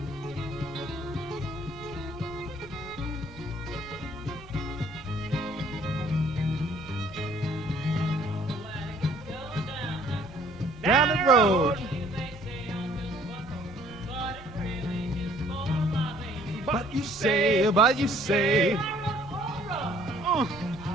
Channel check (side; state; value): both; normal; correlation 0.59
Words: Down the road. But you say,